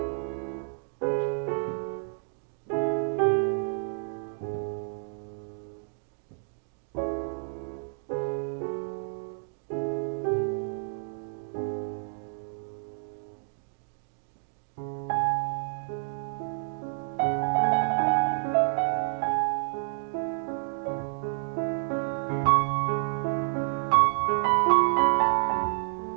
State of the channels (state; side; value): silent; left; digital silence